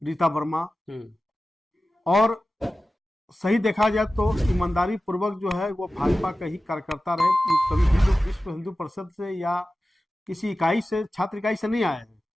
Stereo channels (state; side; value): normal; both; correlation 0.95